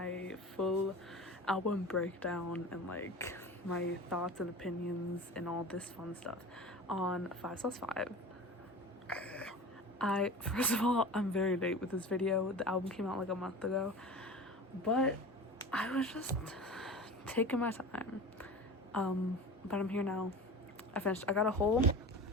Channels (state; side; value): normal; both; correlation 0.34